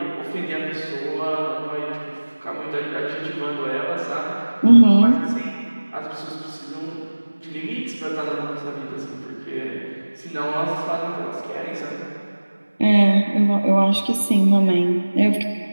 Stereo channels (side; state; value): both; inverted; correlation -1.00